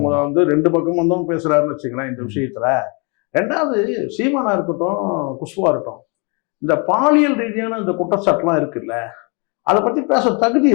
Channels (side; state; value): right; quieter; 32.9 dB